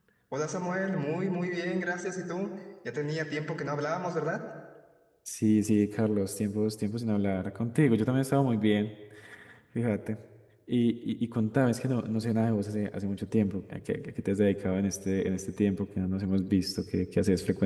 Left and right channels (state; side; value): identical; both; correlation 1.00